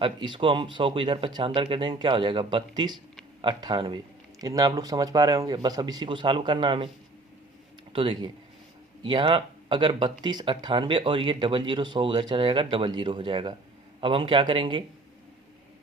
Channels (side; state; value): left; quieter; 3.0 dB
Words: अब इसको हम 100 को इधर 75 कर देंगे, क्या हो जाएगा 3298। इतना आप लोग समझ पा रहे होंगे। बस अब इसी को सॉल्व करना हमें। तो देखिए यहाँ अगर 3298 और ये 00 100 उधर चला जाएगा 00 हो जाएगा। अब हम क्या करेंगे